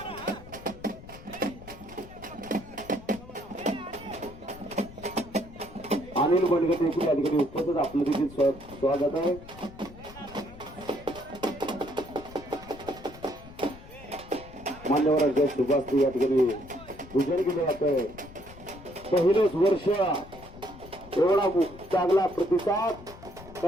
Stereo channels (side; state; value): left; noise; rumble, 17 dB below the sound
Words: अनिल बंडगटे या ठिकाणी उपस्थित आपलं देखील स्वागत आहे। मान्यवरांच्या शुभास्ती या ठिकाणी पूजन केलं जातंय। पहिलेच वर्ष एवढा चांगला प्रतिसाद